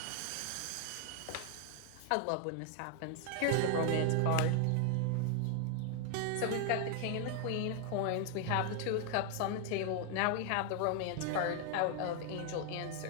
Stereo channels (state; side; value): different; both; correlation 0.00